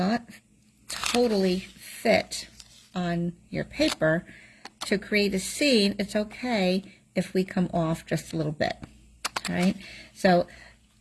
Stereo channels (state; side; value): identical; both; correlation 1.00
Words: totally fit on your paper. To create a scene, it's okay if we come off just a little bit, all right? So